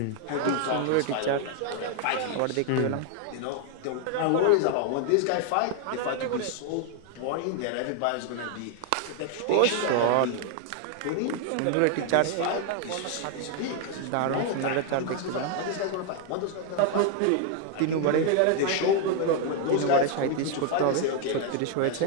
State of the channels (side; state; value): both; different; correlation 0.00